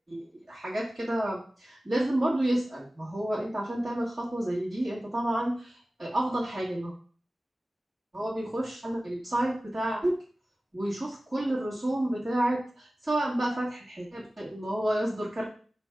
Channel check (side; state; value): both; normal; correlation 0.97